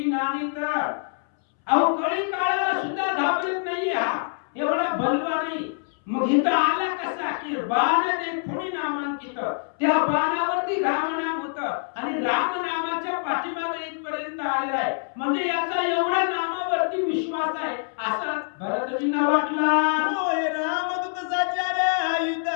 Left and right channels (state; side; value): silent; right; 62 dB below the other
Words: नानित. अहो कळी काळाला सुद्धा घाबरत नाही हा, एवढा बलवान नाही. मग इथं आला कसा की बाण देखोनी नामांकित, त्या बाणावरती राम नाम होतं आणि राम नामाच्या पाठीमागे इथपर्यंत आलेला आहे. म्हणजे याचा एवढा नामावरती विश्वास आहे असं भरतजींना वाटला. होय रामदूत साचार युद्ध